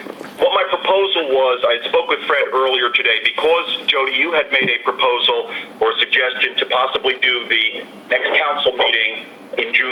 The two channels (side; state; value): both; identical; correlation 1.00